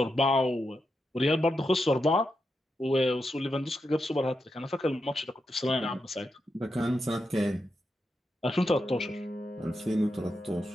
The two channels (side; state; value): both; normal; correlation 0.86